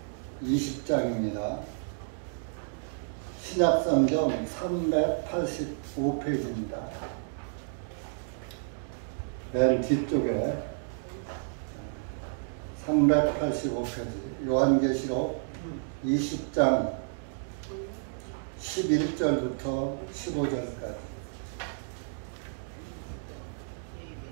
20장입니다. 신약성경 385페이지입니다. 맨 뒤쪽에 385페이지 요한계시록 20장 11절부터 15절까지.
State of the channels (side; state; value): left; silent; digital silence